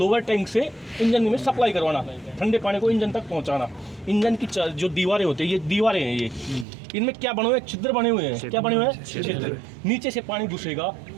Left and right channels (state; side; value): drops out; left; at 6.7 s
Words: टैंक से इंजन में सप्लाई करवाना, ठंडे पानी को इंजन तक पहुंचाना। इंजन की जो दीवारें होती है, ये दीवारें हैं, ये इनमें क्या बने हुए हैं, छिद्र बने हुए हैं। क्या बने हुए हैं, छिद्र। नीचे से पानी घुसेगा